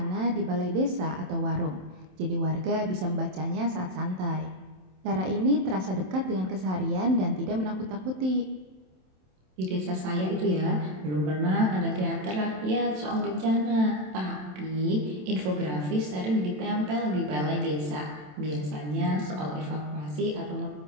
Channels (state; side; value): late; left; 27 ms